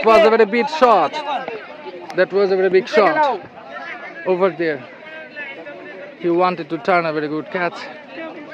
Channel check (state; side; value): identical; both; correlation 1.00